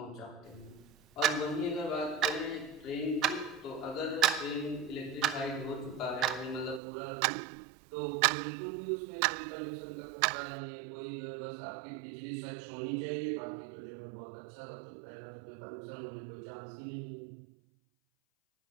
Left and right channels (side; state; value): left; drops out; at 6.8 s